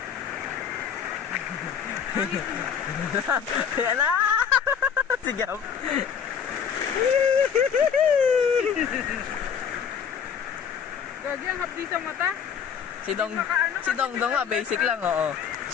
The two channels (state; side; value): quieter; right; 7.5 dB